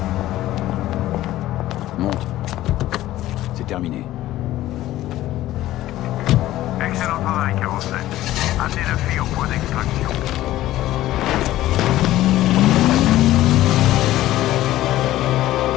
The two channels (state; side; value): quieter; right; 14.9 dB